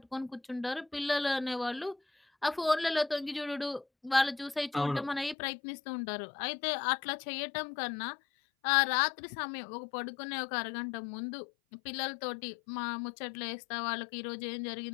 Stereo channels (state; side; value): drops out; right; at 5.4 s